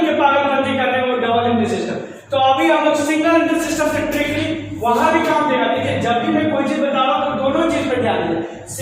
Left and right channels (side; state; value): both; identical; correlation 1.00